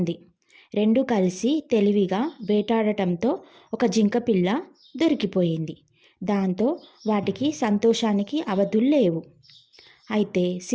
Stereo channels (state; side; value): identical; both; correlation 1.00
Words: రెండు కలిసి తెలివిగా వేటాడటంతో ఒక జింకపిల్ల దొరికిపోయింది. దాంతో వాటికి సంతోషానికి అవధులు లేవు. అయితే